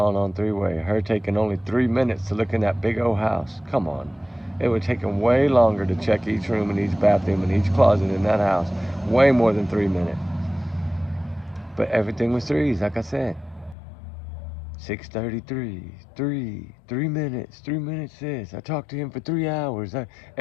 on three-way, her taking only 3 minutes to look in that big old house. Come on. It would take him way longer to check each room and each bathroom and each closet in that house. Way more than 3 minutes. But everything was threes, like I said. 6:33, 3 minutes, 3 minutes this. I talked to him for 3 hours.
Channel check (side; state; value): right; drops out; at 13.8 s